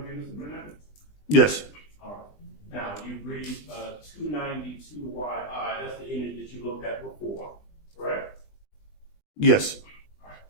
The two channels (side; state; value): right; late; 20 ms